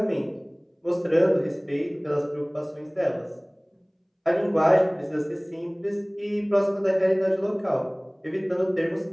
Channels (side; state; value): both; identical; correlation 1.00